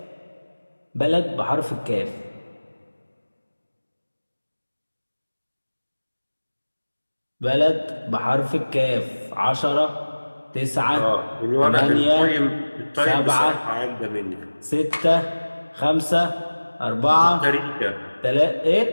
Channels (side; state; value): both; inverted; correlation -1.00